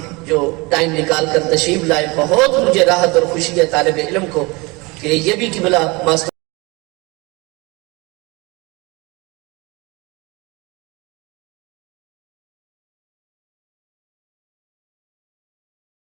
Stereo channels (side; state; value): left; quieter; 25.5 dB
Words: جو ٹائم نکال کر تشریف لائے، بہت مجھے راحت اور خوشی ہے طالب علم کو کہ یہ بھی قبلہ ماسٹر